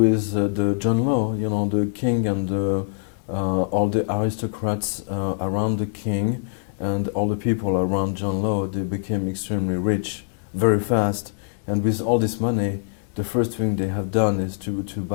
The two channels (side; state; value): right; silent; digital silence